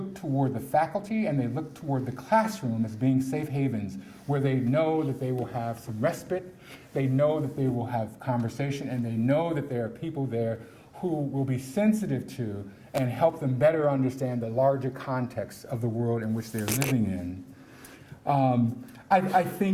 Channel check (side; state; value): both; identical; correlation 1.00